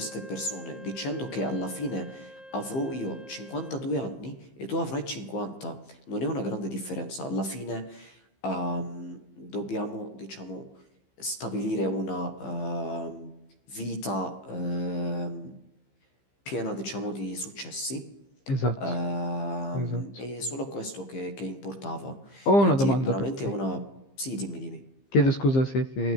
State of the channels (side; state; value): right; late; 15 ms